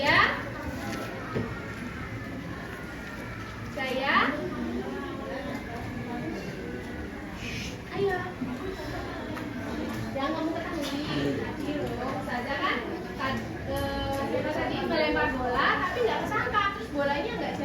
Ayo. Yang kamu ketahui tadi loh, saja kan tadi melempar bola tapi nggak kesangka, terus bolanya nggak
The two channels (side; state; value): both; identical; correlation 1.00